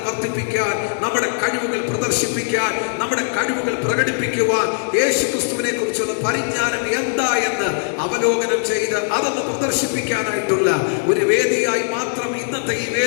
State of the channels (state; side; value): silent; right; 63 dB below the other